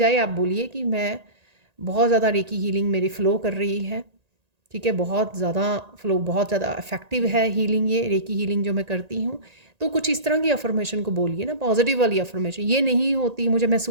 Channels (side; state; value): left; late; 1.8 ms